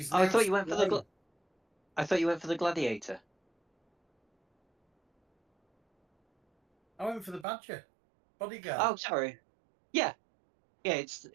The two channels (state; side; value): drops out; left; at 7.5 s